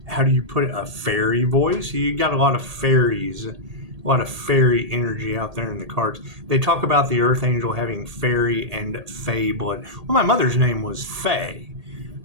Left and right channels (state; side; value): late; left; 1.8 ms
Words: how do you put it? A fairy voice? You got a lot of fairies, a lot of fairy energy out there in the cards. They talk about the Earth Angel having fairy and fae blood. Well, my mother's name was Fae.